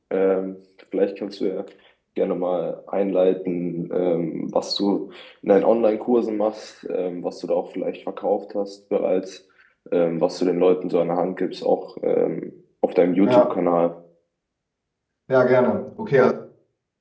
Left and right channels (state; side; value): identical; both; correlation 1.00